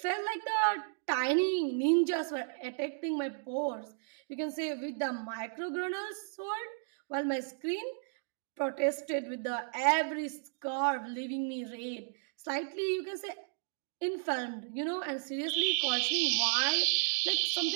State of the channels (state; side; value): silent; left; digital silence